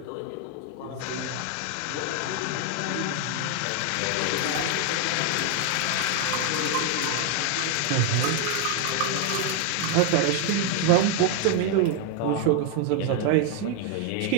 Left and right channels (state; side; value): different; both; correlation 0.01